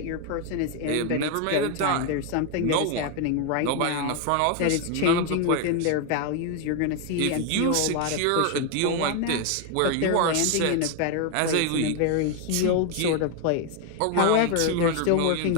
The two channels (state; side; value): different; both; correlation 0.01